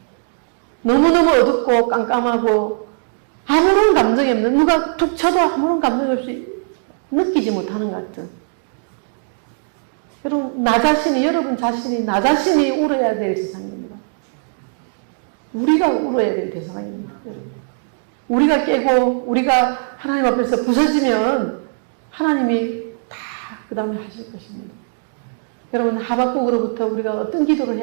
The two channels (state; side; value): silent; left; digital silence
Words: 너무너무 어둡고 깜깜하고 아무런 감정이 없는, 누가 툭 쳐도 아무런 감정이 없이 느끼지 못하는 것 같은. 여러분, 여러분 자신이, 나 자신이 울어야 될 세상입니다. 우리가 울어야 될 대상입니다, 여러분. 우리가 깨고, 우리가 하나님 앞에서 부서지면 하나님이 다 그 다음에 하실 것입니다. 여러분, 하박국으로부터 우리가 어떤 기도를